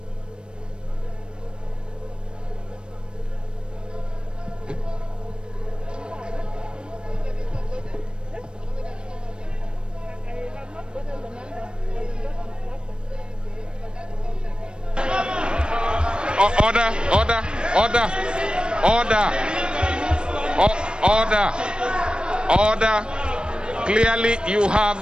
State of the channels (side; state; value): left; late; 0.054 ms